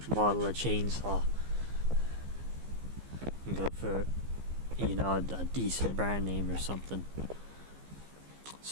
model of chainsaw. And go for, you know, a decent brand name or something.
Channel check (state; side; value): late; left; 15 ms